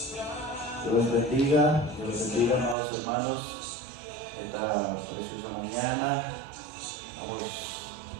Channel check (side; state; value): left; drops out; at 2.8 s